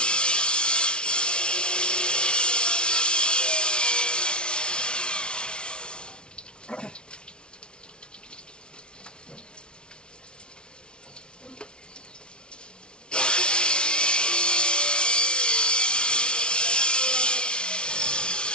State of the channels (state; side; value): late; right; 0.056 ms